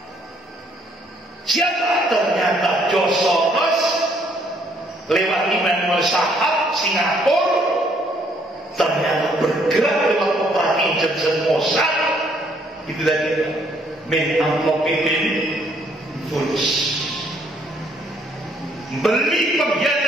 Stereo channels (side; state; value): both; normal; correlation 0.67